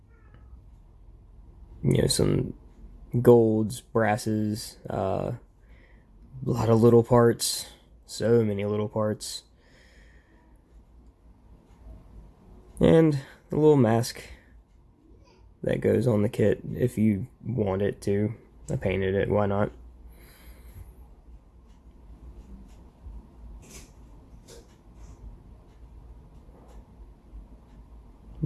Some golds, brasses, a lot of little parts, so many little parts. And a little mask that goes on the kit if you want it to. I painted it, why not?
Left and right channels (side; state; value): both; identical; correlation 1.00